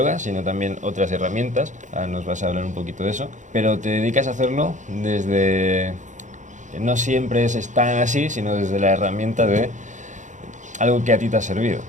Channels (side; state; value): left; late; 0.36 ms